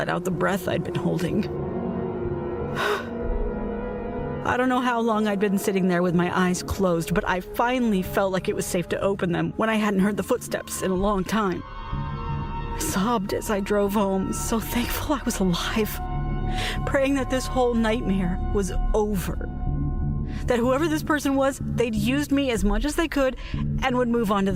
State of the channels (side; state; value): both; identical; correlation 1.00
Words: out the breath I'd been holding. I don't know how long I'd been sitting there with my eyes closed, but I finally felt like it was safe to open them when I hadn't heard the footsteps in a long time. I sobbed as I drove home, so thankful I was alive, praying that this whole nightmare was over. That whoever this person was, they'd used me as much as they could and would move on to